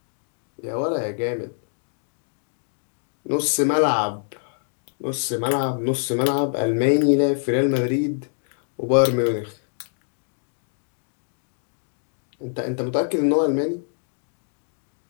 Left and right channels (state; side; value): silent; right; digital silence